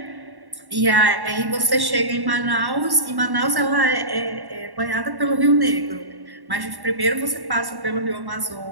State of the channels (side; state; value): left; late; 1.1 ms